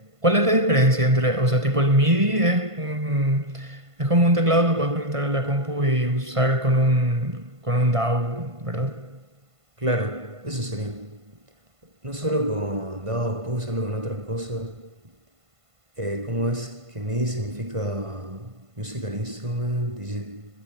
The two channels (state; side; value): late; left; 1.5 ms